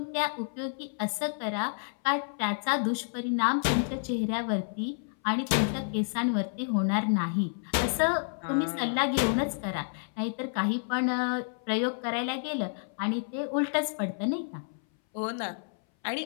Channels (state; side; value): silent; right; 58 dB below the other